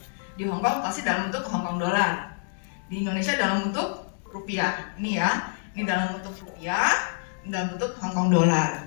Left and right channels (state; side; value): silent; right; digital silence